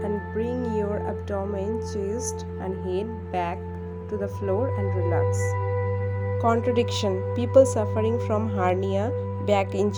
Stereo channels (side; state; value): both; identical; correlation 1.00